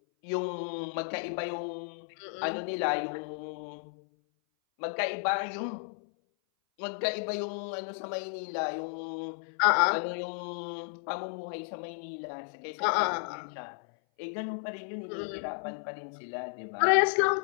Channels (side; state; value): right; silent; 56 dB below the other